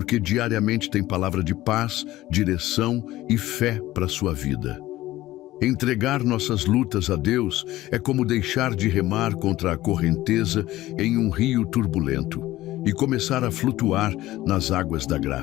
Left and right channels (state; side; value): quieter; right; 16.1 dB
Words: diariamente tem palavra de paz, direção e fé para a sua vida. Entregar nossas lutas a Deus é como deixar de remar contra a correnteza em um rio turbulento e começar a flutuar nas águas da